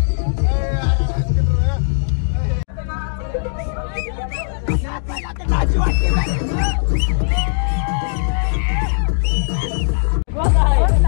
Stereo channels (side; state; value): right; silent; digital silence